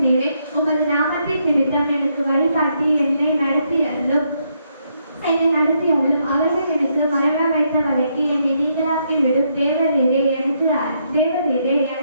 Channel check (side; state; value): both; inverted; correlation -0.76